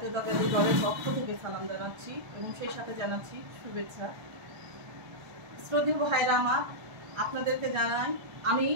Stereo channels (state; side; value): late; left; 1.3 ms